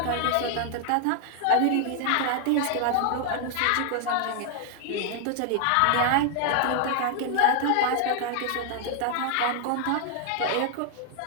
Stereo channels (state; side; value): different; both; correlation 0.00